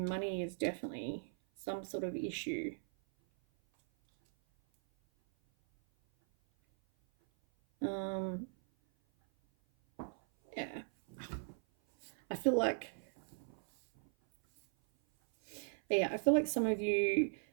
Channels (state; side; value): silent; left; 52 dB below the other